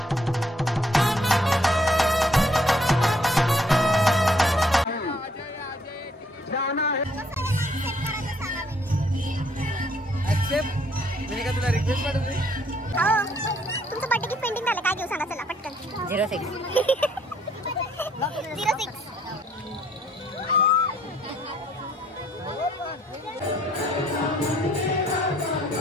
मैंने तुला रिक्वेस्ट पाठवली. तुमचं बर्थडे गिफ्ट पेंडिंग झालं काय घेऊ सांगा चला पटकन. 06 06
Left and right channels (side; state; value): both; normal; correlation 0.66